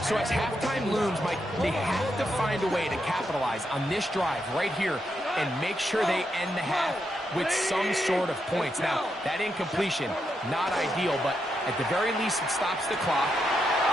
So as halftime looms, Mike, they have to find a way to capitalize on this drive right here and make sure they end the half with some sort of points. Now, that incompletion, not ideal, but at the very least, it stops the clock.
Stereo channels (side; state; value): both; normal; correlation 0.83